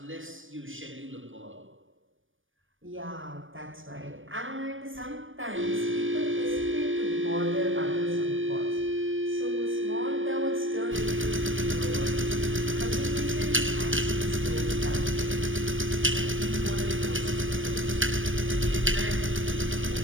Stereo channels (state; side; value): late; left; 0.57 ms